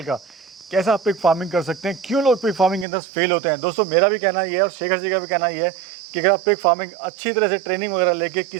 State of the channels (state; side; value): drops out; left; at 2.9 s